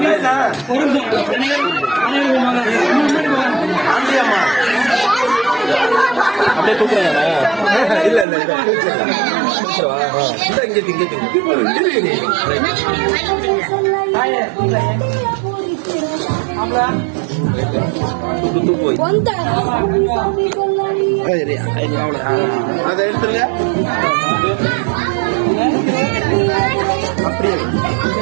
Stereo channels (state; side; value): drops out; left; at 8.2 s